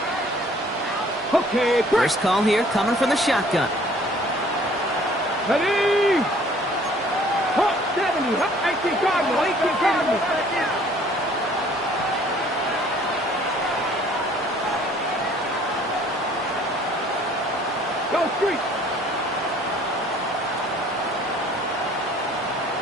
Okay, First call here coming from the shotgun. ready. Hop, 70, hop, 18 Cardinal, 18 Cardinal. Go street.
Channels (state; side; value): normal; both; correlation 0.56